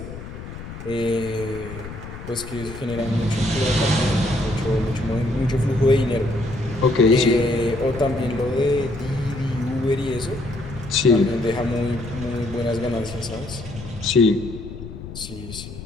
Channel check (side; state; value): left; noise; rumble, 12 dB below the sound